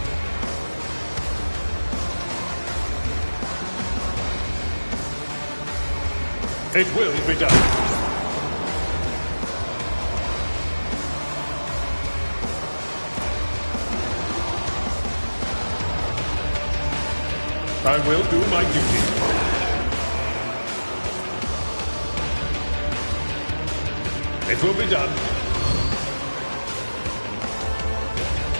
It will be done. I will do my duty. It will be done.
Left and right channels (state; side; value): inverted; both; correlation -1.00